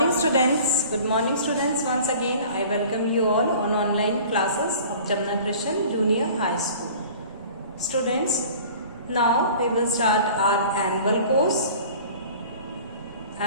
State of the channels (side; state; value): both; inverted; correlation -0.45